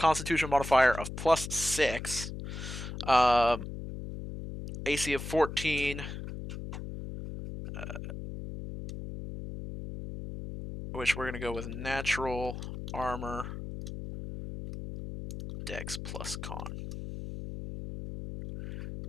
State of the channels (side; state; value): left; noise; hum, 8 dB below the sound